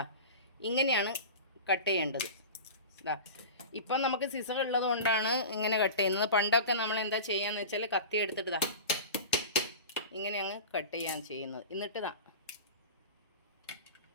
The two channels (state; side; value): inverted; both; correlation -0.32